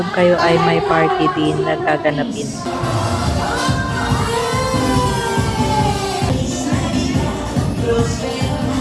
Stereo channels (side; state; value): both; identical; correlation 1.00